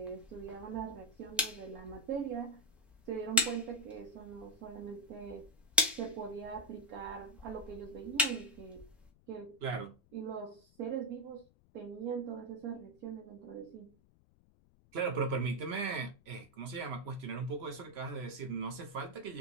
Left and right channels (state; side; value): noise; left; rumble, 28 dB below the sound